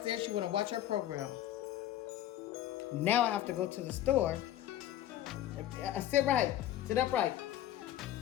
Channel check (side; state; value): right; quieter; 12.6 dB